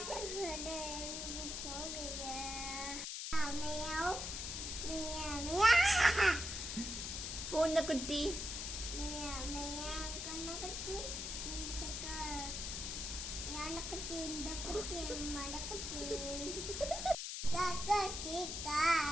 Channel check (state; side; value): noise; left; hiss, 4 dB below the sound